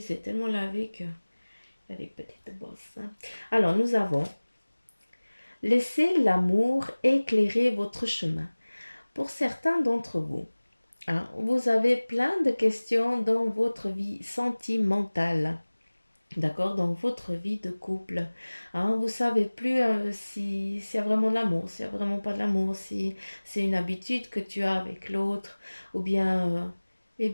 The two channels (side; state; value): both; inverted; correlation -1.00